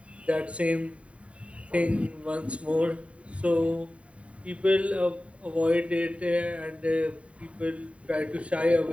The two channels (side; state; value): left; late; 0.064 ms